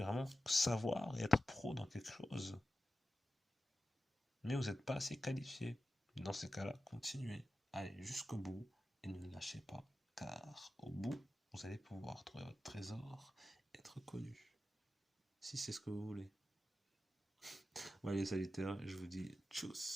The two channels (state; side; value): normal; both; correlation 0.93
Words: vraiment savoir et être pro dans quelque chose, mais vous n'êtes pas assez qualifié. Dans ces cas-là, continuez, allez jusqu'au bout et ne lâchez pas, car au bout, vous allez pouvoir trouver votre trésor et être connu, si c'est ce que vous voulez. Voilà les Sagittaires, je vous dis